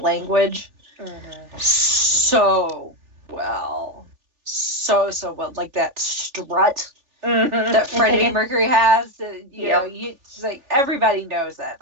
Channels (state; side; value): late; left; 3.4 ms